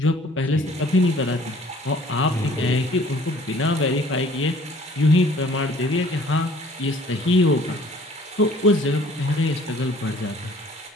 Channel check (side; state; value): both; normal; correlation 0.54